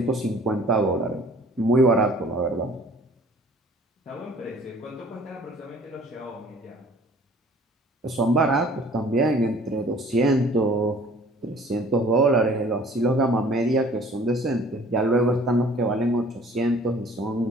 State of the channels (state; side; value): normal; both; correlation 0.52